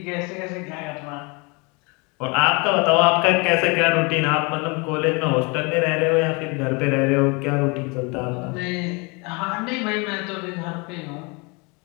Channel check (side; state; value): right; quieter; 29.4 dB